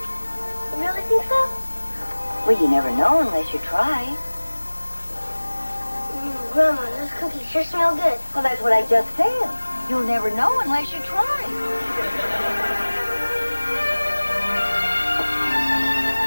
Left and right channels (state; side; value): inverted; both; correlation -1.00